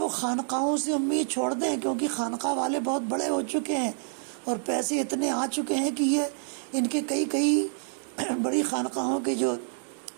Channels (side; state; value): left; silent; digital silence